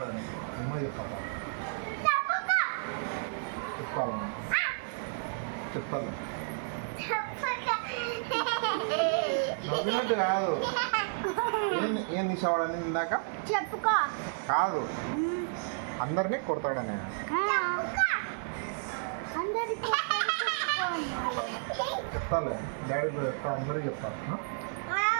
అమ్మ చెప్తాపా చెప్పాలి చెప్తాను నవ్వినట్టు కాదు ఏం తీసేవాడని ఇందాక చెప్పుకో కాదు అందరినీ కొడతాడని చెప్తాలే డాడీ చెప్తా అందరికీ చెప్తాను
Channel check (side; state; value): left; silent; digital silence